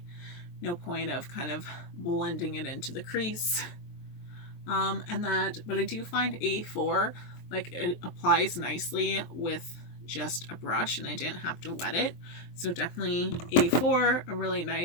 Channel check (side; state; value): right; late; 23 ms